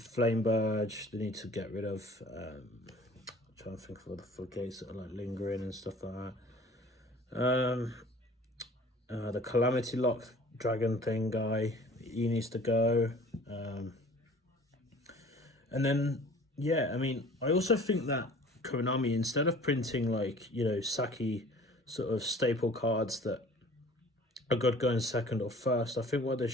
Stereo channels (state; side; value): normal; both; correlation 0.48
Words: Burge. They need to get rid of. Trying to think of other floodgates that are like lingering and stuff like that. The Calamity Lock Dragon thing guy. He needs to go. And then, yeah, I mean, I also think that Konami, instead of printing like, you know, Saki sort of staple cards that are good going second or first, I think what they